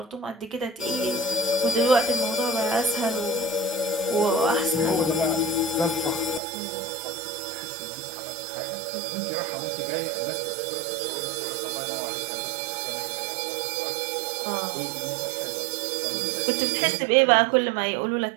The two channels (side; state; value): left; drops out; at 6.4 s